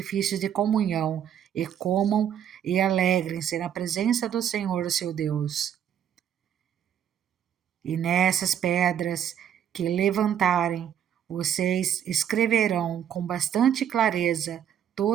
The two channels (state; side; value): quieter; left; 9.5 dB